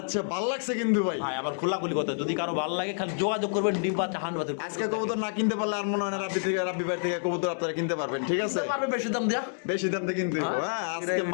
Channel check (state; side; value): silent; right; 59 dB below the other